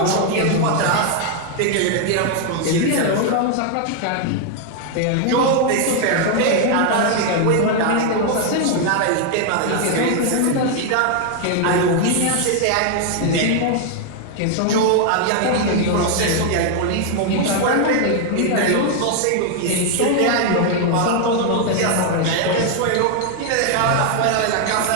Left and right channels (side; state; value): both; different; correlation 0.00